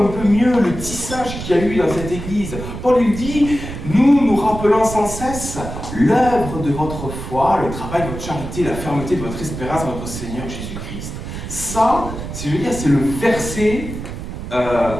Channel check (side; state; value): right; noise; rumble, 8 dB below the sound